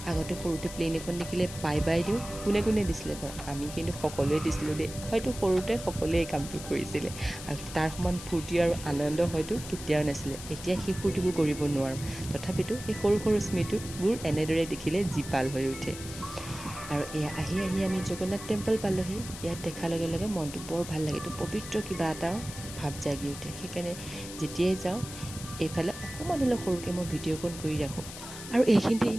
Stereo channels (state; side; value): noise; left; hiss, 12 dB below the sound